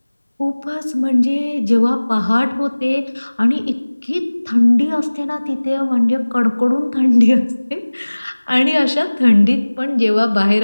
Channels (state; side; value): inverted; both; correlation -1.00